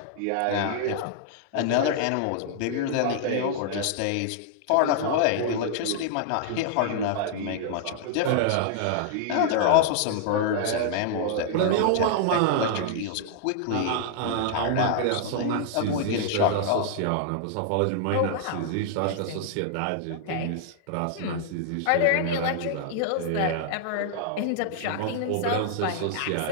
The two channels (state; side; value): different; both; correlation -0.01